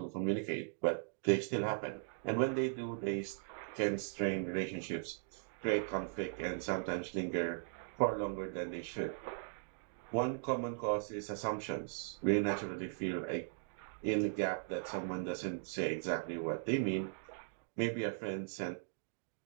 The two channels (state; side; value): silent; left; digital silence